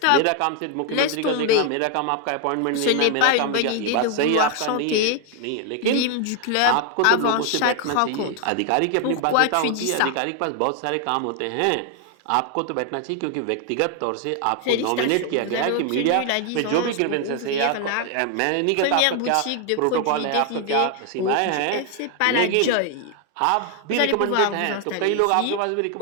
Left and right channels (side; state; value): both; different; correlation 0.00